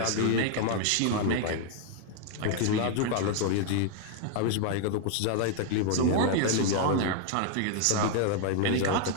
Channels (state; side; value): different; both; correlation 0.00